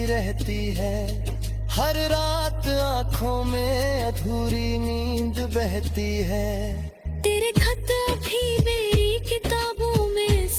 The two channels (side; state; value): both; identical; correlation 1.00